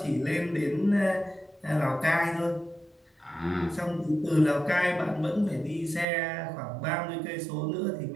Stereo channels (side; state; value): left; drops out; at 6.1 s